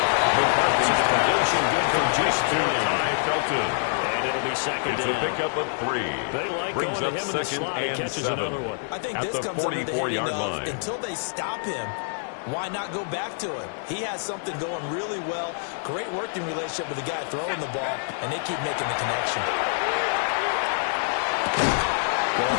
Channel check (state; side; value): silent; right; digital silence